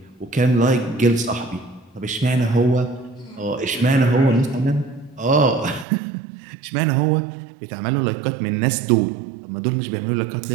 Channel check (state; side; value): drops out; left; at 5.9 s